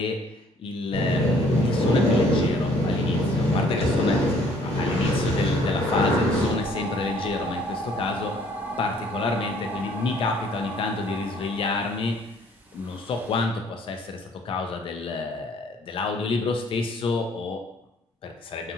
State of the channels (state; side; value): normal; both; correlation 0.60